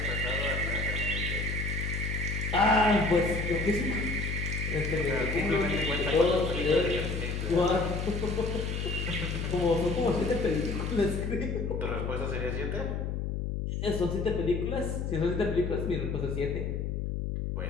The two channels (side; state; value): left; noise; hum, 2 dB below the sound